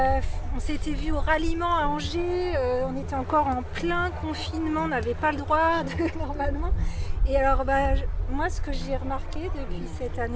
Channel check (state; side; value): identical; both; correlation 1.00